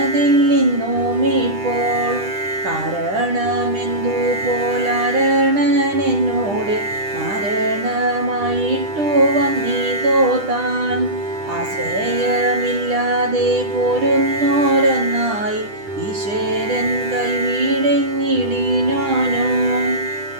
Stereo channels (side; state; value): left; late; 10 ms